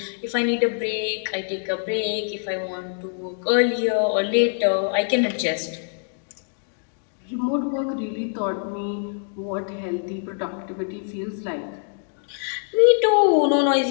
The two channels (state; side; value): silent; right; 63 dB below the other